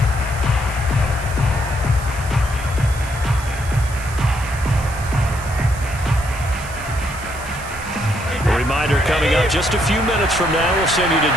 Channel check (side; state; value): right; noise; hiss, 16 dB below the sound